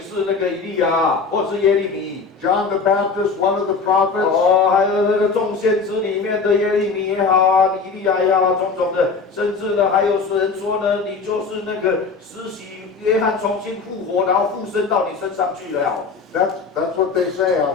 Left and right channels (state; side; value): quieter; right; 4.7 dB